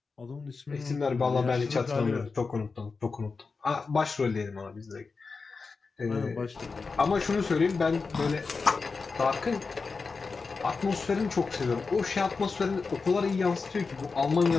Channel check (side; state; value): right; quieter; 4.5 dB